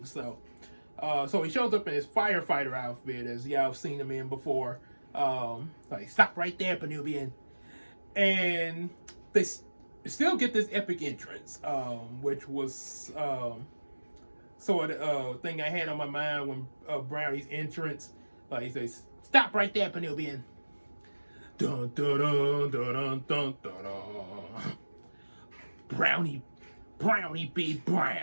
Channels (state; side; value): inverted; both; correlation -1.00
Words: So he shows up in his firefighter outfit, as y'all have seen him in before. Like, stop right there, Penubian. And they still get this epic entrance, which was sort of thing I had on my mind when Brownie's entrance. Like, he says, stop right there, Penubian. Dun, dun, dun, dun, dun, dun, dun, dun. Brownie B.